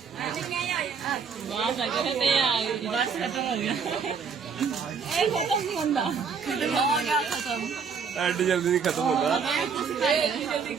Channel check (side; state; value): left; quieter; 5.9 dB